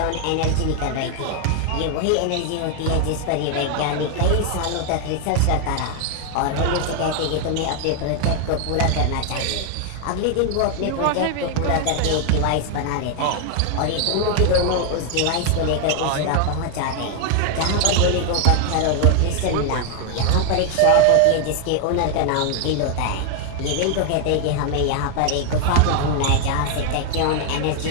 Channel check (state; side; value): different; both; correlation 0.00